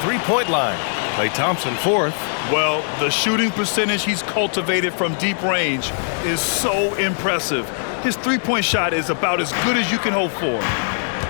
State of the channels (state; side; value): silent; right; digital silence